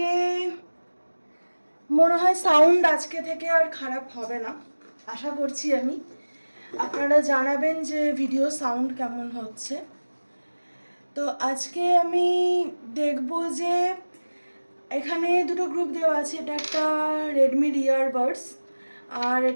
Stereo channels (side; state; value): both; inverted; correlation -1.00